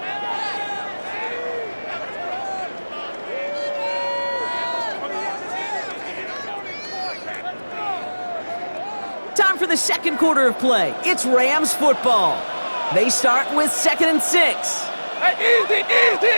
Time for the second quarter of play. It's Rams football. They start with 2nd and 6. Hey,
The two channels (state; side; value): inverted; both; correlation -1.00